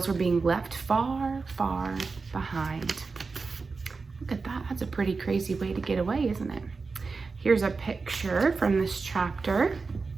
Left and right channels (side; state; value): left; quieter; 4.4 dB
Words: were being left far, far behind. Look at that. That's a pretty crazy way to get away, isn't it? Here's a picture from this chapter.